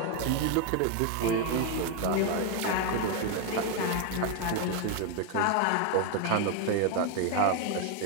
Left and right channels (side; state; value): both; different; correlation 0.01